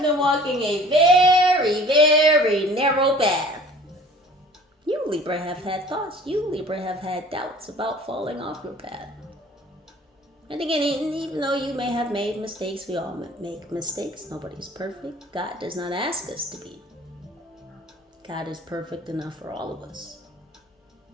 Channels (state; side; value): normal; both; correlation 0.49